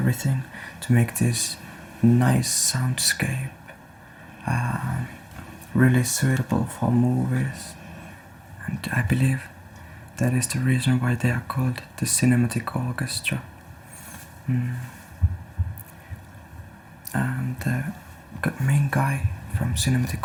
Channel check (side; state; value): both; identical; correlation 1.00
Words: to make this nice soundscape, really suitable for movies. And I believe that is the reason why they are called the Cinematic Orchestra. And the main guy from